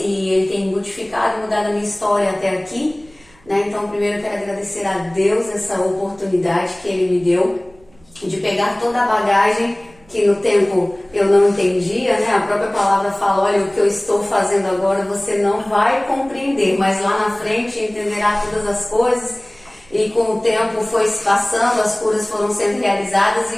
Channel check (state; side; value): noise; right; rumble, 29 dB below the sound